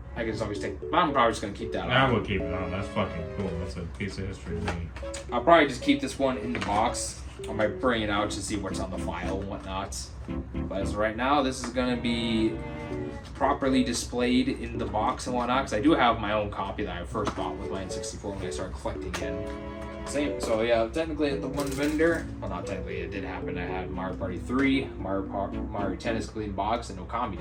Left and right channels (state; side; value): identical; both; correlation 1.00